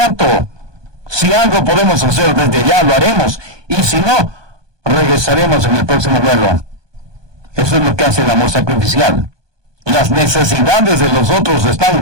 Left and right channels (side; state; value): left; late; 1.2 ms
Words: Si algo podemos hacer desde ya, lo haremos. Y si no, regresaremos en el próximo vuelo. Eso es lo que hace el amor sacrificial. Las necesidades de los otros